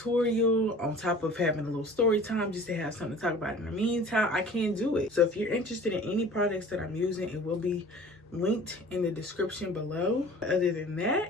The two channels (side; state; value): both; normal; correlation 0.45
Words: on top of having a little story time just to have something to talk about in the meantime. I can't do it. So if you're interested in any products that I'm using, it will be linked in the description below. Other than